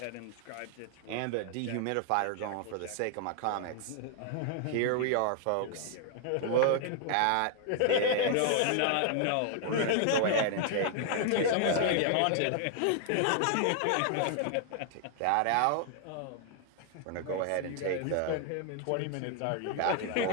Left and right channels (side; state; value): both; different; correlation 0.00